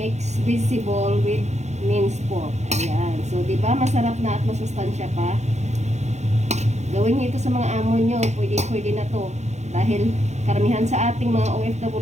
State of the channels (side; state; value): left; late; 0.33 ms